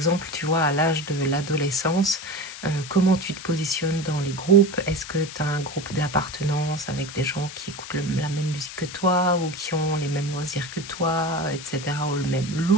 tu vois, à l'âge de l'adolescence, comment tu te positionnes dans les groupes? Est-ce que tu as un groupe d'appartenance avec des gens qui écoutent la même musique que toi ou qui ont les mêmes loisirs que toi, etc., ou le même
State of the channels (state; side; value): noise; left; hiss, 12 dB below the sound